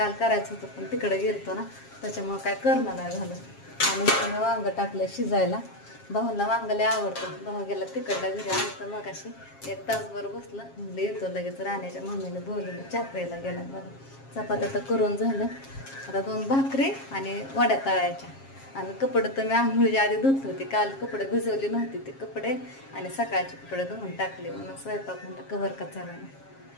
करायचं होतं पण तिकडे गेलतो ना, त्याच्यामुळे काय करणं नाही झालं. आणि वांग टाकलं शिजायला. भाऊला वांग लय आवडतं. भाऊ गेला तिकडल्या घरी. आलं तर मग अशी 1 तासभर बसलं. म्हणलं येतो लगेच. राण्याच्या मम्मीने बोलवलं, चहा प्यायला गेला बघा. चपात्या तर करून झालं. आता 2 भाकरी आणि वड्या तळायच्या. आणि कपडे तर मी आंघोळीच्या आधी धुत होते. काल कपडे भिजवली नव्हती ते कपडे, आणि सकाळचे कपडे धुवून टाकले. म्हणून स्वयंपाक म्हणलं कवर का चाला नाही.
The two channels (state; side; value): late; right; 7.4 ms